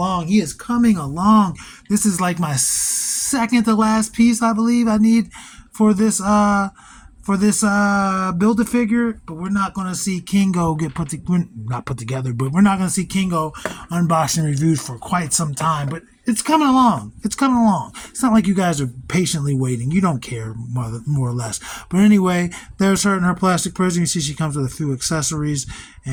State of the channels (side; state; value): both; identical; correlation 1.00